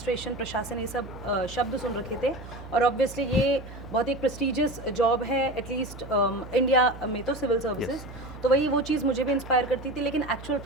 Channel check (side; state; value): right; noise; hum, 14 dB below the sound